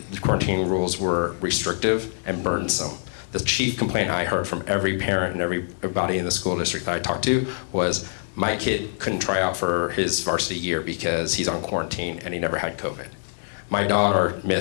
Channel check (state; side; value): silent; right; digital silence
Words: quarantine rules were restrictive and burdensome. The chief complaint I heard from every parent and everybody in the school district that I talked to was, my kid couldn't try out for his varsity year because he's on quarantine and he never had COVID. My daughter